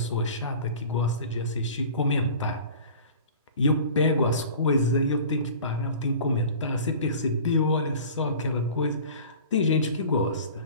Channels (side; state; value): both; inverted; correlation -0.41